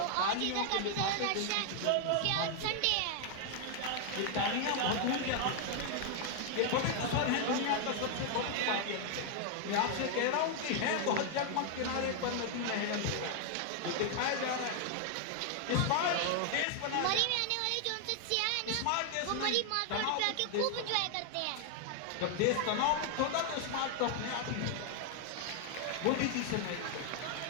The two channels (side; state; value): both; different; correlation 0.00